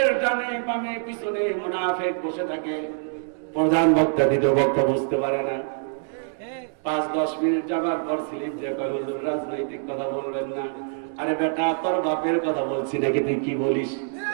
ডানে বামে পিছনে মুনাফিক বসে থাকে। প্রধান বক্তা দ্বিতীয় বক্তা বুঝতে পারে না, 5-10 মিনিট যাবার পর স্লিপ যে হুজুর রাজনৈতিক কথা বলবেন না। আরে বেটা তোর বাপের কথা বলছি নাকি, তুই কি বলিস?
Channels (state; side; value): silent; left; digital silence